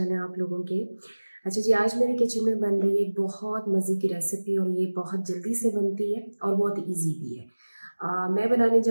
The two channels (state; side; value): inverted; both; correlation -1.00